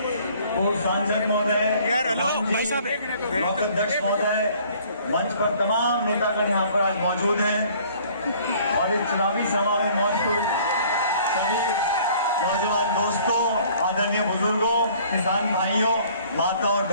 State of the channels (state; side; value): inverted; both; correlation -0.55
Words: पूर्व सांसद महोदय, ब्लॉक अध्यक्ष महोदय, मंच पर तमाम नेतागण यहाँ पर आज मौजूद हैं और इस चुनावी सभा में मौजूद सभी नौजवान दोस्तों, आदरणीय बुजुर्गों, किसान भाइयों, माता और